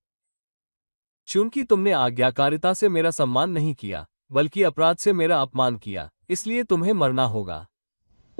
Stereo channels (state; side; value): inverted; both; correlation -1.00